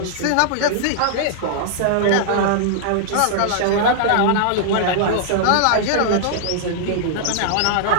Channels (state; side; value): different; both; correlation -0.01